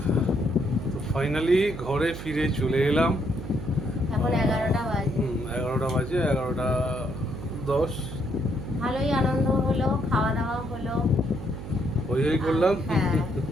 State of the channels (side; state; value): right; noise; hum, 10 dB below the sound